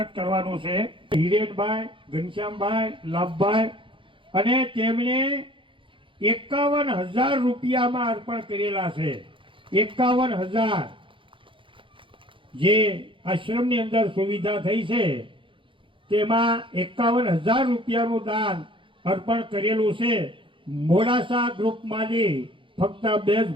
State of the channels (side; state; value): left; late; 0.25 ms